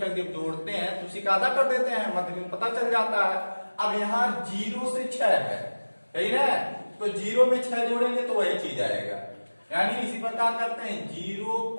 जब जोड़ते हैं तो उसी का आधा कर देते हैं, मध्य बिंदु पता चल जाता है। अब यहाँ 0 से 6 है, यही ना, तो 0 में 6 जोड़ेंगे तो वही चीज आएगा। यानी इसी प्रकार करते हैं 0 +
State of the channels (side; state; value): both; inverted; correlation -1.00